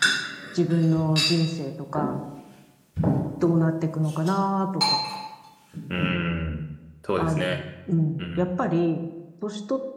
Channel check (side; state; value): both; identical; correlation 1.00